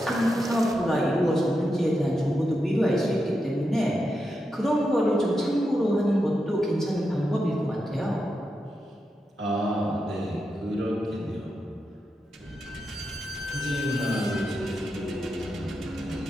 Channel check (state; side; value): normal; both; correlation 0.87